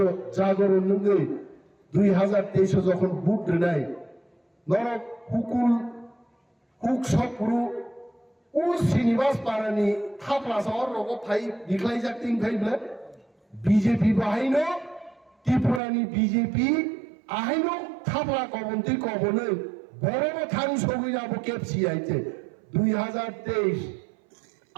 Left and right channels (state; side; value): drops out; left; at 15.8 s